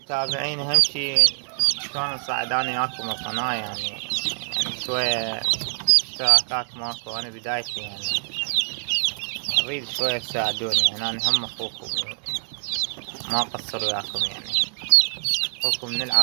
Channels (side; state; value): left; silent; digital silence